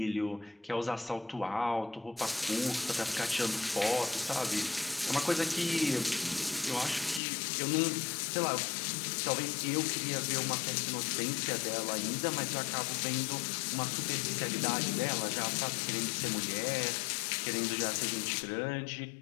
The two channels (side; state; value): right; drops out; at 7.2 s